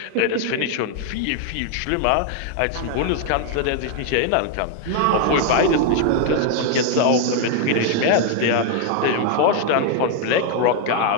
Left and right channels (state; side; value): different; both; correlation 0.00